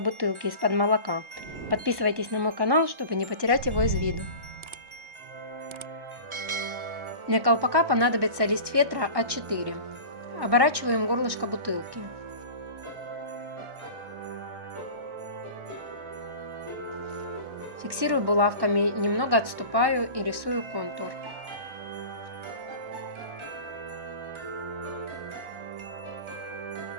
из-под молока. Подписывайтесь на мой канал, чтобы не потерять его из виду. Для колпака понадобится лист фетра А4. Оборачиваем горлышко бутылки. Фиксирую булавками, немного отступаю и рисую контур.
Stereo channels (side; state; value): left; late; 1.1 ms